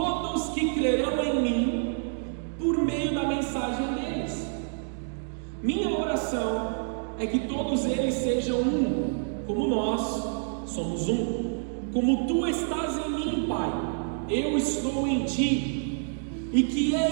que crerão em mim por meio da mensagem deles. Minha oração é que todos eles sejam um, como nós somos um. Como tu estás em mim, Pai, eu estou em ti, e que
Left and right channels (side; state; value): left; silent; digital silence